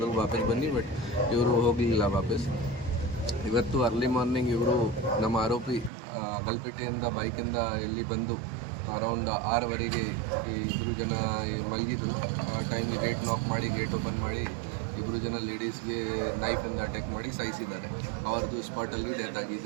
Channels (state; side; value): drops out; left; at 5.9 s